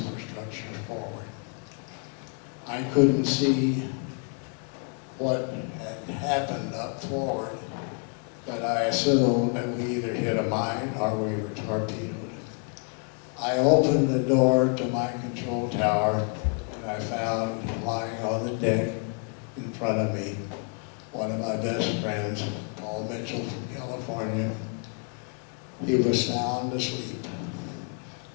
forward. I couldn't see what had happened up forward, but I assumed that we either hit a mine or we were torpedoed. I opened the door to my control tower and I found lying on the deck in front of me one of my best friends, Paul Mitchell from California. He was sound asleep.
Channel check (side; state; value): right; quieter; 39.0 dB